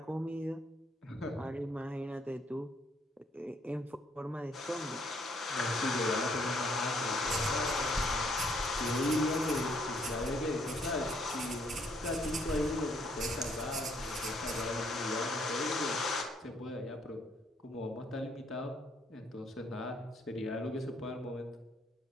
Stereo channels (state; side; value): normal; both; correlation 0.68